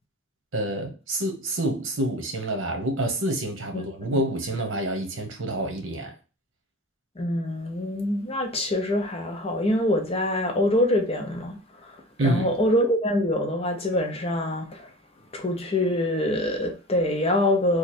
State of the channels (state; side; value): normal; both; correlation 0.36